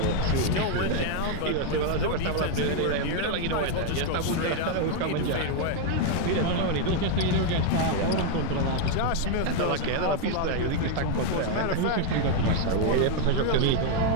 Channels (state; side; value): different; both; correlation 0.01